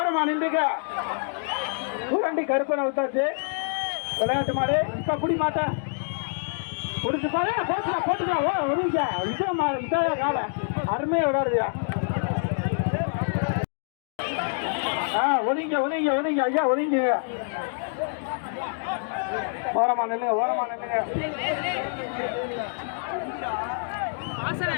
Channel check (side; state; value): right; silent; digital silence